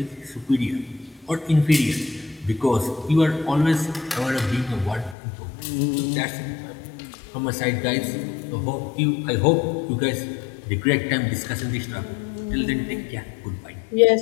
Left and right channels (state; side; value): drops out; right; at 5.2 s